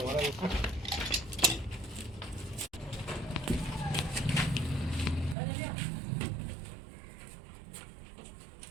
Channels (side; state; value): left; drops out; at 5.4 s